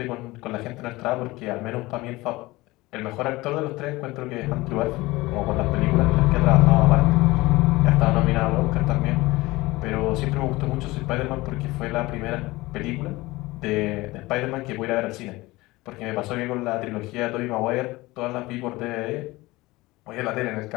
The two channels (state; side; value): quieter; right; 20.4 dB